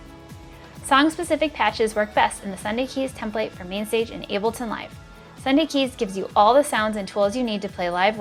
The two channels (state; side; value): identical; both; correlation 1.00